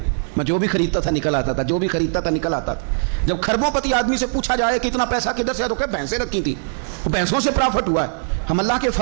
میں جو بھی خریدتا تھا نکل آتا تھا، جو بھی خریدتا تھا نکل آتا تھا۔ جب خربوں پتی آدمی سے پوچھا جائے کہ اتنا پیسہ کدھر سے ہے، تو کہ بھینسیں رکھی تھی، وہ بھینسوں سے پرافٹ ہوا ہے۔ ہم اللہ کے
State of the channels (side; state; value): left; silent; 60 dB below the other